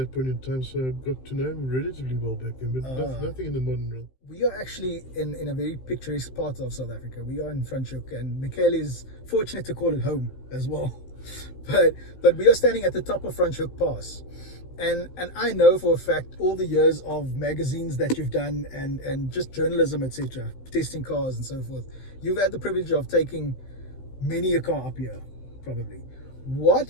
point in time, so I got to know him relatively well back then, but nothing in the modern realm. We are actually in a very picturesque part of South Africa. We are in Franschhoek, and Michele is fortunate to call it home as well. But we are standing at the top of Franschhoek Pass. And I know for a fact all the years of magazines that you've done and just journalism, etc., testing cars and so forth. You've had the privilege of taking many a car up here, probably. What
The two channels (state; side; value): late; right; 15 ms